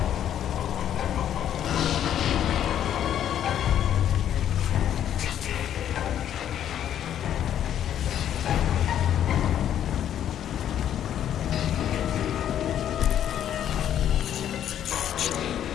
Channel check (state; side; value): quieter; right; 10.3 dB